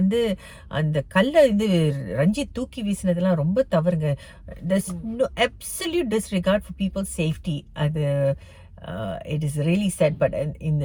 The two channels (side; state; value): both; identical; correlation 1.00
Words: அந்த கல்ல வந்து ரஞ்சித் தூக்கி வீசினதெல்லாம் ரொம்ப தவறுங்க. there's no absolute disregard for people's safety. அது it is really chat. But இந்த